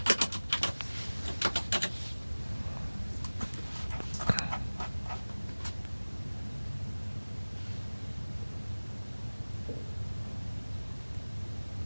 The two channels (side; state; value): both; inverted; correlation -1.00